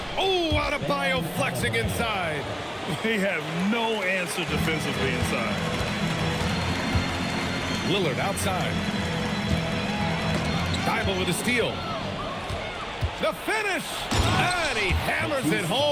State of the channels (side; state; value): both; identical; correlation 1.00